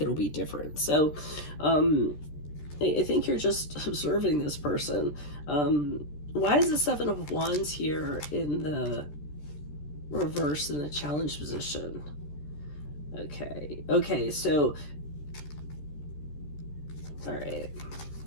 it'll be different. So I think you're just observing this person. Why is the Seven of Wands here in the reverse in the challenge position? Okay, so all right,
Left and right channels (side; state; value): right; late; 13 ms